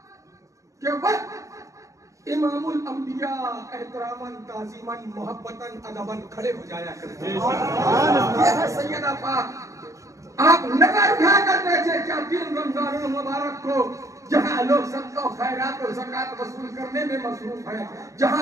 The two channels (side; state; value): left; late; 0.15 ms